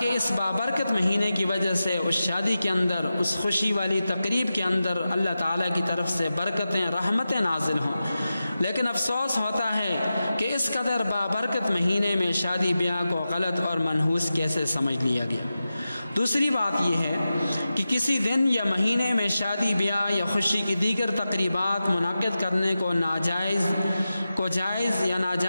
اس بابرکت مہینے کی وجہ سے اس شادی کے اندر، اس خوشی والی تقریب کے اندر اللہ تعالیٰ کی طرف سے برکتیں، رحمتیں نازل ہوں۔ لیکن افسوس ہوتا ہے کہ اس قدر بابرکت مہینے میں شادی بیاہ کو غلط اور منحوس کیسے سمجھ لیا گیا۔ دوسری بات یہ ہے کہ کسی دن یا مہینے میں شادی بیاہ یا خوشی کی دیگر تقریبات منعقد کرنے کو جائز یا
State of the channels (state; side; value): inverted; both; correlation -0.93